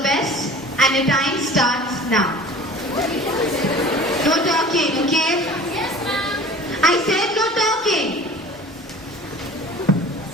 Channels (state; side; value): normal; both; correlation 0.43